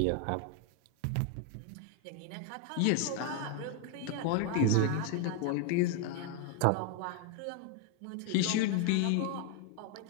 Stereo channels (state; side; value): different; both; correlation 0.01